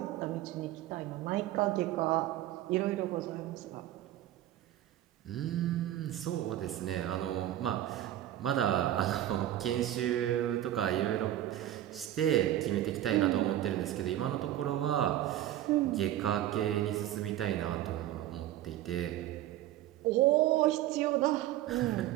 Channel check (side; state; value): left; quieter; 13.3 dB